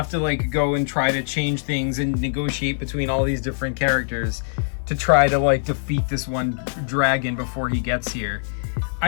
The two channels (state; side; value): silent; right; digital silence